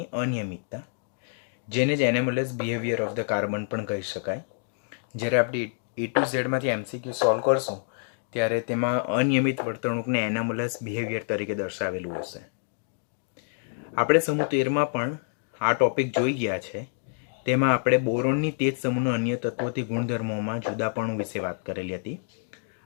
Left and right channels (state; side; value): silent; right; digital silence